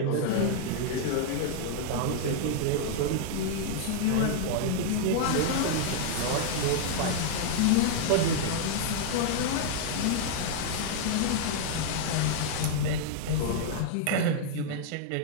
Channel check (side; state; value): both; different; correlation -0.01